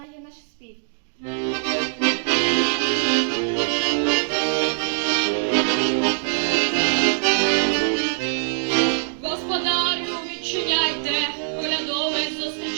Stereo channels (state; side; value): silent; left; digital silence